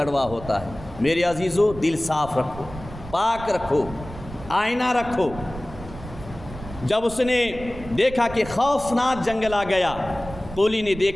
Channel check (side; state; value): right; noise; rumble, 14 dB below the sound